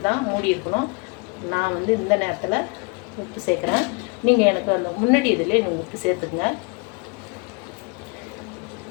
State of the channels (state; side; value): quieter; right; 31.4 dB